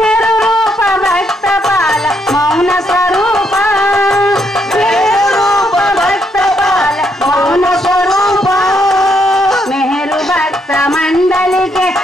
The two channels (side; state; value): both; normal; correlation 0.75